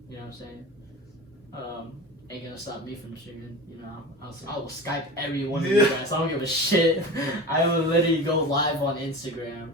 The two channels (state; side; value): normal; both; correlation 0.31